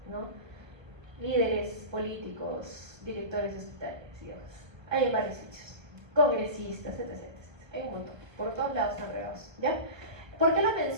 ¿no? Líderes políticos, directores de hospitales y demás. Hay en varios sitios, congresistas, etc, etc. Hay un montón, por todos lados están regados, ¿ya? ¿Por qué lo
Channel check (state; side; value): late; left; 1.4 ms